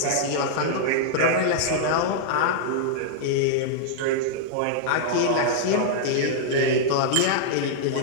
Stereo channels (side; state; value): both; different; correlation -0.02